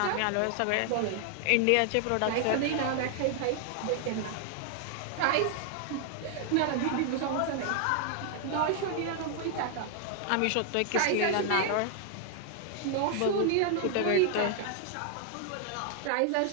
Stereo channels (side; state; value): both; different; correlation 0.00